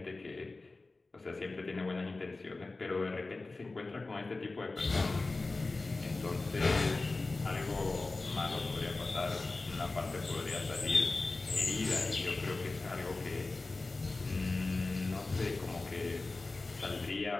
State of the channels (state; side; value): quieter; right; 3.4 dB